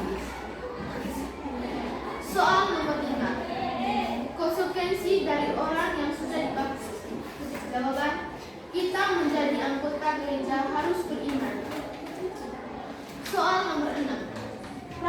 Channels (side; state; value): both; identical; correlation 1.00